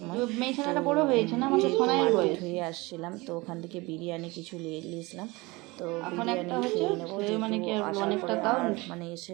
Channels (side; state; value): left; quieter; 23.4 dB